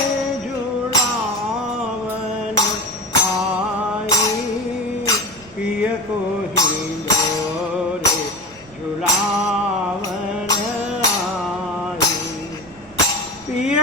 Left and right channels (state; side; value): noise; right; rumble, 23 dB below the sound